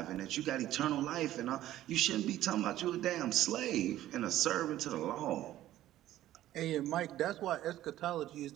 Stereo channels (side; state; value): left; quieter; 13.8 dB